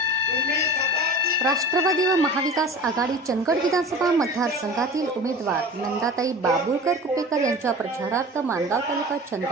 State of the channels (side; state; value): both; normal; correlation 0.37